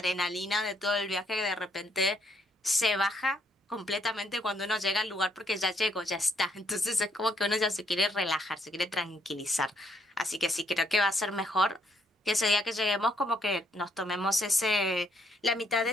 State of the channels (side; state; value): both; normal; correlation 0.71